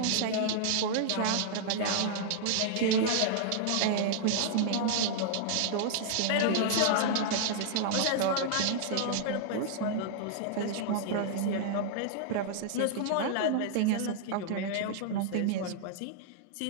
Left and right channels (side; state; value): both; different; correlation -0.01